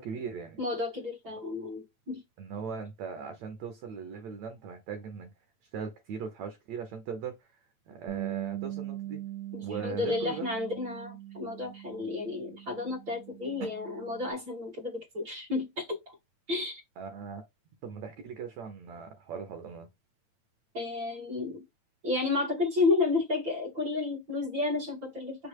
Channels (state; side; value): late; left; 8.9 ms